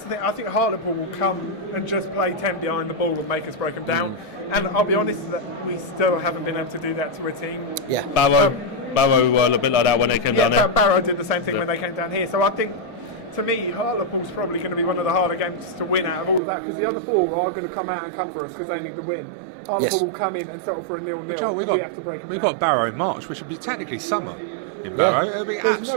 the thing. I think Hartlepool will come and just play 10 behind the ball and make us break them down. And I'll be honest that we still haven't been able to do that to a team. Yeah. Barrow were a bit like that when they came down there. Barrow did the same thing when they came down here. So I think, to me, Hartlepool's probably going to be one of the harder games to win out of all of that, because the other 4 are going to come out and come for us because they need to win. Hartlepool will come in and settle for a 0-0, and we have to break them down. We've got Barrow in March, which would be technically summer. Barrow. There's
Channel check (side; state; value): left; drops out; at 16.4 s